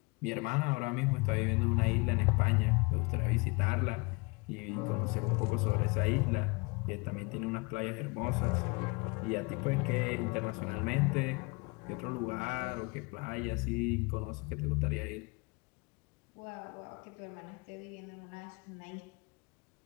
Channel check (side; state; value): right; quieter; 28.2 dB